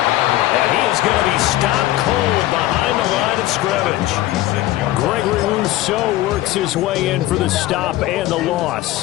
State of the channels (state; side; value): quieter; right; 15.7 dB